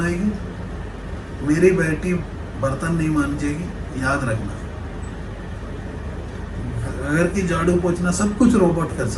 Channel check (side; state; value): both; identical; correlation 1.00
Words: मेरी बेटी बर्तन नहीं मांजेगी, याद रखना। घर की झाड़ू पोछना सब कुछ रोबोट कर